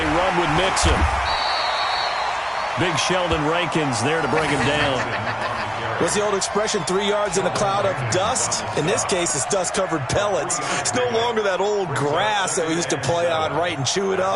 run with Mixon. Big Sheldon Rankins there to bring him down. What's the old expression, 3 yards in a cloud of dust? In this case, it's dust-covered pellets. It's no longer that old grass that we used to play on, right, and chew it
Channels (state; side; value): identical; both; correlation 1.00